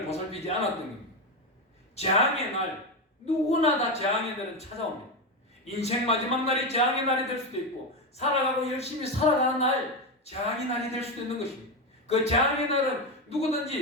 보살피지 않았던 겁니다. 재앙의 날, 누구나 다 재앙의 날은 찾아옵니다. 인생 마지막 날이 재앙의 날이 될 수도 있고 살아가고 열심히 살아가는 날 재앙의 날이 될 수도 있는 것입니다. 그 재앙의 날은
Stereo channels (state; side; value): normal; both; correlation 0.13